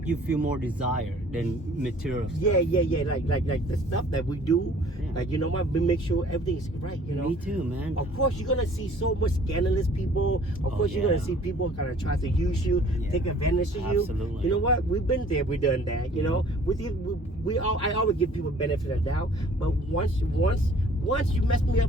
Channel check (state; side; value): normal; both; correlation 0.53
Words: you feel more desire than material stuff. Yeah. Like the stuff that we do, like, you know what, we make sure everything is right, you know. Me too, man. Of course you're gonna see so much scandalous people. Of course you're gonna see people kind of try to use you, take advantage of you. Absolutely. You know what, we've been there, we've done that, you know. I always give people benefit of the doubt, but once you mess me